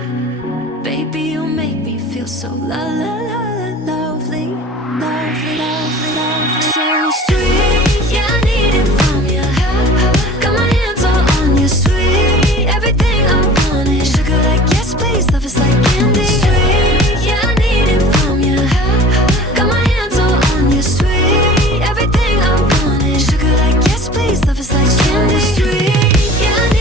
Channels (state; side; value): normal; both; correlation 0.43